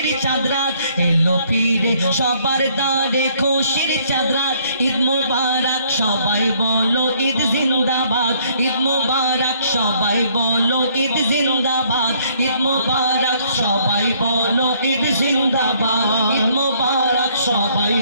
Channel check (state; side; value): inverted; both; correlation -0.64